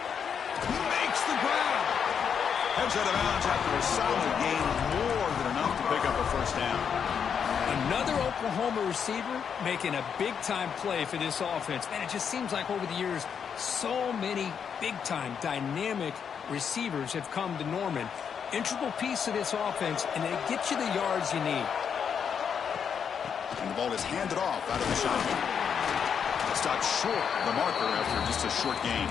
He makes the grab. Heads out of bounds after a solid gain, more than enough to pick up a first down. Another Oklahoma receiver making a big-time play for this offense. Man, it just seems like over the years, so many big-time, dynamic receivers have come to Norman. Integral piece of this offense, and they get you the yards you need. And the ball is handed off out of the shotgun. Stopped short of the marker after just a short gain.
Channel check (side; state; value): right; quieter; 7.2 dB